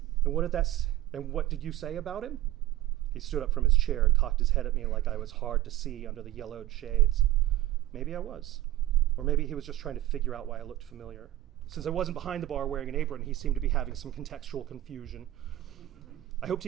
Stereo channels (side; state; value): left; quieter; 15.1 dB